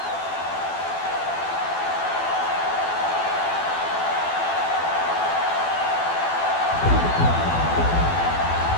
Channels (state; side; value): late; right; 12 ms